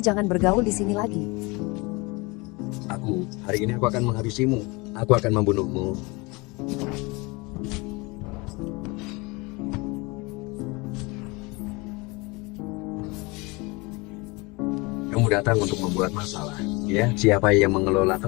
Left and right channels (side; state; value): right; quieter; 25.8 dB